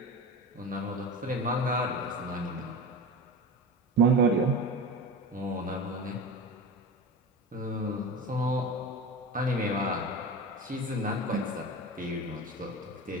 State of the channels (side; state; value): both; normal; correlation 0.28